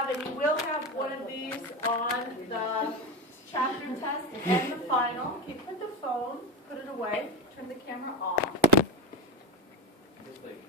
and you will have one of these on the chapter test and the final. Okay, put the phone, put it away, turn the camera off.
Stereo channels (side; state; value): both; normal; correlation 0.18